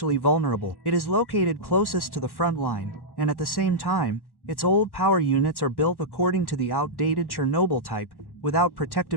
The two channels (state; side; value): late; right; 1.1 ms